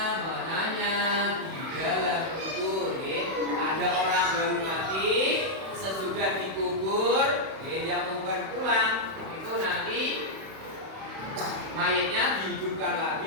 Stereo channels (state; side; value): late; left; 31 ms